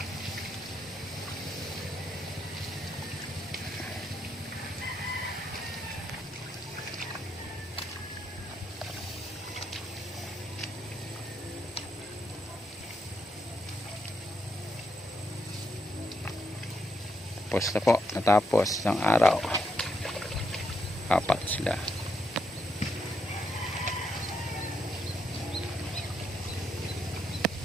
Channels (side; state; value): both; normal; correlation 0.79